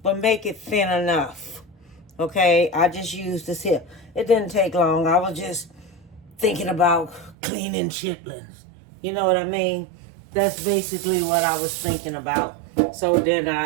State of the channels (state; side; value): drops out; left; at 7.4 s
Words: but make it thin enough. Okay? I just used this here. It didn't take long. I was just thinking about cleaning chitlins. You know what I mean? That's basically what I was thinking about. So then